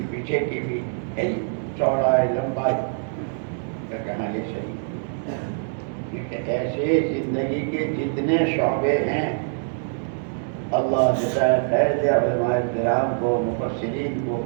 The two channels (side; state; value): left; silent; digital silence